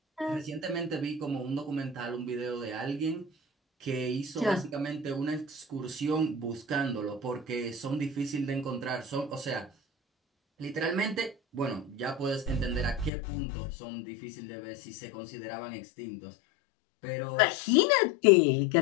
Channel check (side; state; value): right; drops out; at 13.1 s